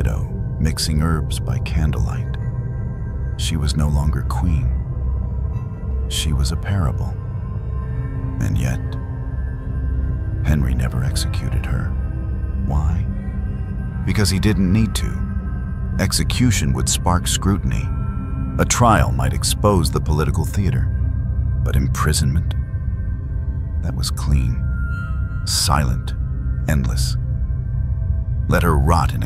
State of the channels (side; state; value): both; identical; correlation 1.00